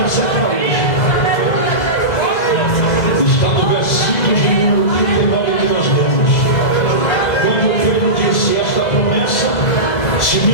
para hoje. Está no versículo de número 39 que nós lemos. Quando Pedro disse: esta promessa se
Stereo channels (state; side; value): late; right; 2.0 ms